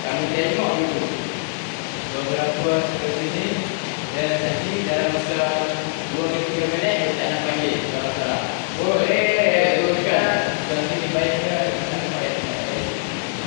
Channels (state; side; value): silent; right; digital silence